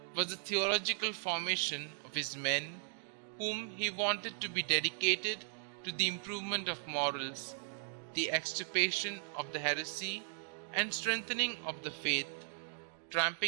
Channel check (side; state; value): left; silent; digital silence